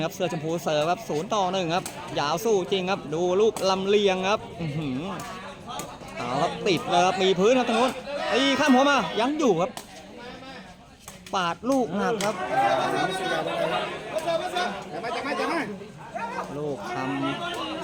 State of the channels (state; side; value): identical; both; correlation 1.00